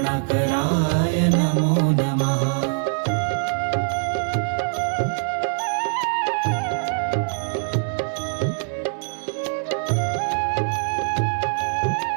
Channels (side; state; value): left; silent; digital silence